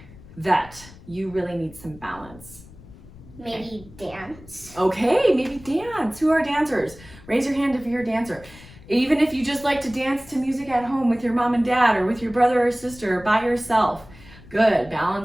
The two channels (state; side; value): noise; left; rumble, 20 dB below the sound